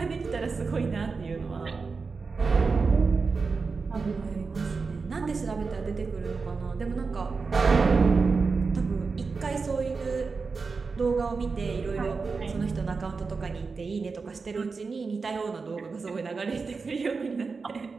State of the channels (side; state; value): left; quieter; 4.6 dB